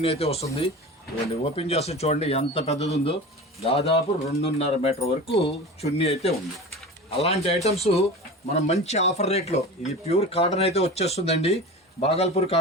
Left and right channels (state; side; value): normal; both; correlation 0.32